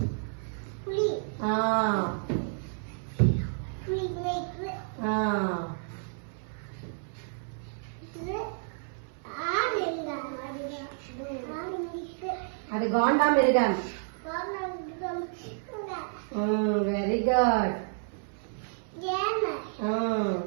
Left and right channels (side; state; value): left; silent; 58 dB below the other